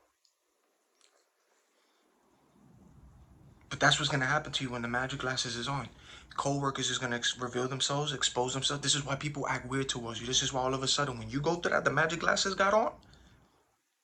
But that's what's going to happen to you when the magic glasses is on. Co-workers is going to reveal themselves, expose themselves. This is why people act weird towards you. This is why all of a sudden when you go through that, the magic glasses got on,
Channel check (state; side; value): identical; both; correlation 1.00